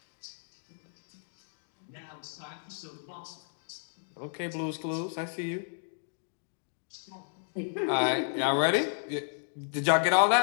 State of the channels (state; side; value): silent; right; digital silence